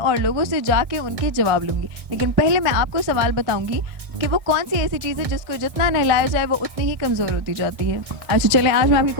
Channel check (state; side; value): late; left; 1.6 ms